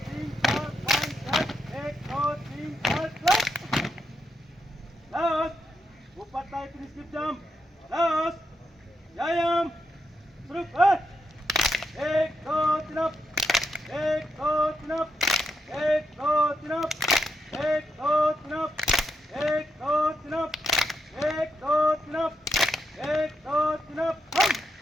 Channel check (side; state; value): both; normal; correlation 0.83